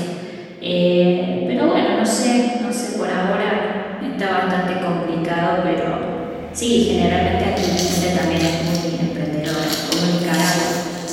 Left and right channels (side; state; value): both; identical; correlation 1.00